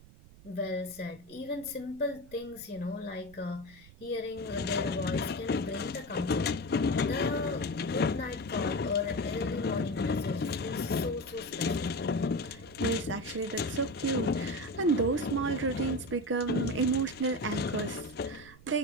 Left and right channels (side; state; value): right; noise; rumble, 22 dB below the sound